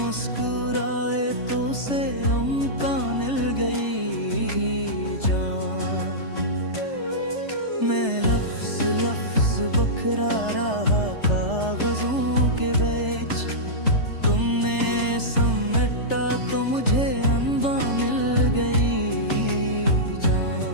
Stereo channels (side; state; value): right; late; 3.3 ms